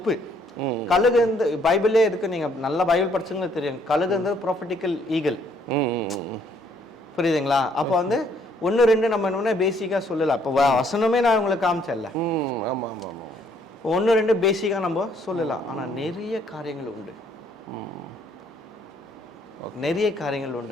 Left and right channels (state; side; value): normal; both; correlation 0.66